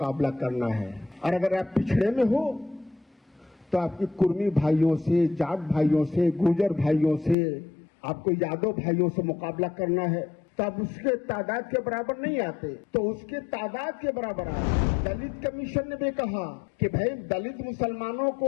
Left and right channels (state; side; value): drops out; right; at 7.4 s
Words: करना है। और अगर आप पिछड़े में हो तो आपकी कुर्मी भाइयों से, जाट भाइयों से, गुर्जर भाइयों से, आपको यादव भाइयों से मुकाबला करना है, तो आप उसके तादाद के बराबर नहीं आते, तो उसके तादाद के बराबर आते। दलित कमीशन ने भी कहा कि भाई दलित मुसलमानों